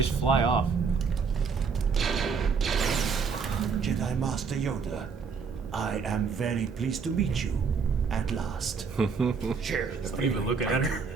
fly off. Jedi Master Yoda, I am very pleased to meet you at last. Share the Not even looking at her.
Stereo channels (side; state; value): left; quieter; 5.6 dB